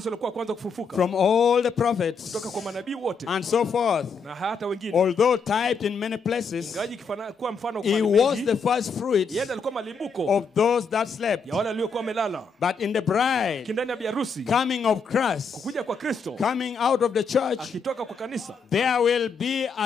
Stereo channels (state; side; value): quieter; right; 4.9 dB